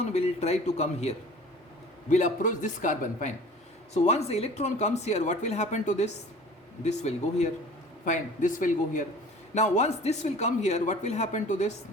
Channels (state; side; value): normal; both; correlation 0.44